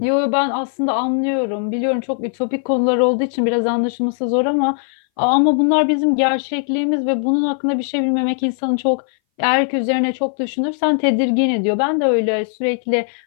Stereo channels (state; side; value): silent; right; 61 dB below the other